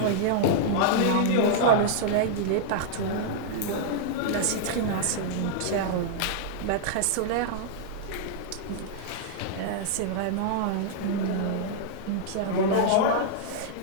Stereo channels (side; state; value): both; different; correlation -0.01